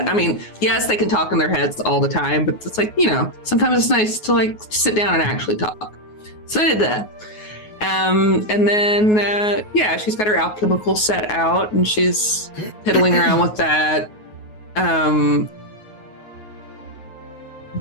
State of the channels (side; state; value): right; late; 9.5 ms